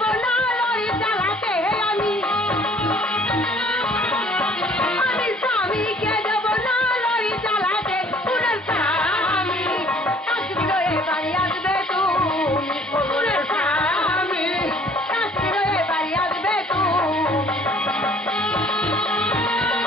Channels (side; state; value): both; normal; correlation 0.56